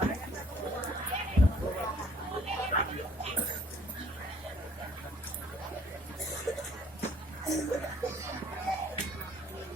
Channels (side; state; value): both; normal; correlation 0.59